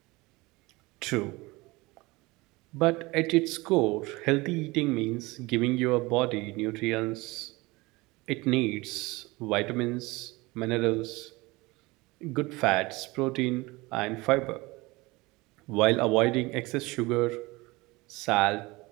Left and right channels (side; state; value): left; quieter; 22.6 dB